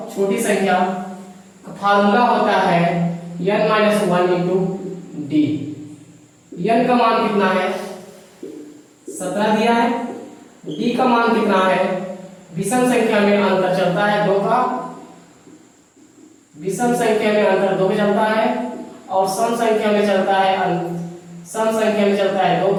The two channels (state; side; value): identical; both; correlation 1.00